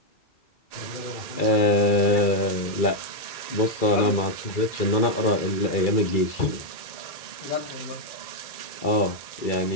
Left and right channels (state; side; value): late; right; 2.3 ms